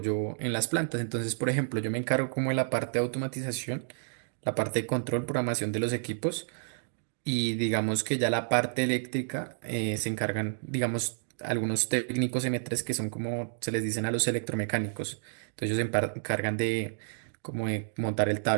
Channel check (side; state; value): left; silent; digital silence